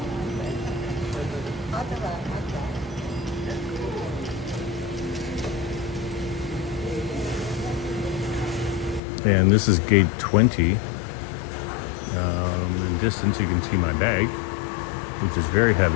And this is gate 20. In distance, you can see my bag, which is very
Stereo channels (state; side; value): drops out; right; at 9.0 s